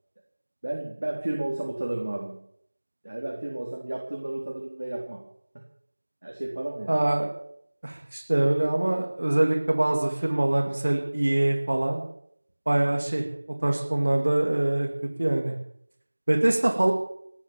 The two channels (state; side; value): inverted; both; correlation -1.00